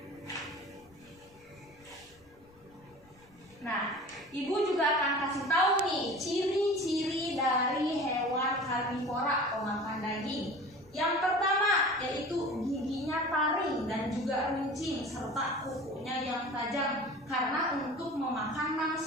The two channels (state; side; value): noise; left; rumble, 28 dB below the sound